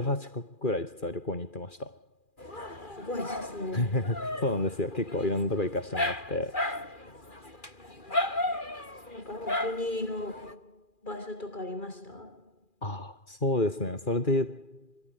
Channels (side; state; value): right; late; 2.4 ms